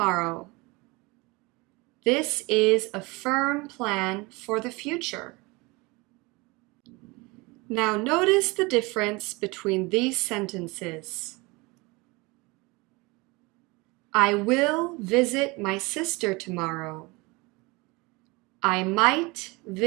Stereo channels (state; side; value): quieter; left; 25.1 dB